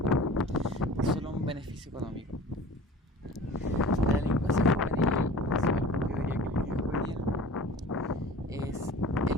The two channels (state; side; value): normal; both; correlation 0.41